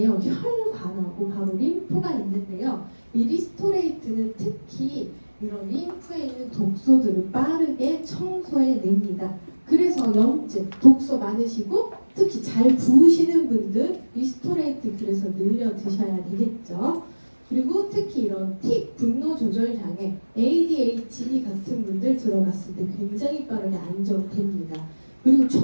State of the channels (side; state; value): both; inverted; correlation -1.00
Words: 혈관하고 바로 림프가 있는데요. 이 리스토레이트는 특히 이런 림프에 있는 독소들을 빠르게 청소해냅니다. 그래서 염증, 독소 많으시고 특히 잘 부으시는 분들 리스토레이트 그래서 늘려 드셔야 되겠죠. 그리고 특히 이런 틱, 분노 조절 장애, ADHD 같은 분들 들어갔을 때 굉장히 빠르게 안정됩니다. 그리고